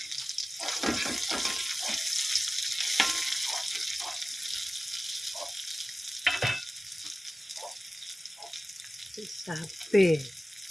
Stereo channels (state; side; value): normal; both; correlation 0.96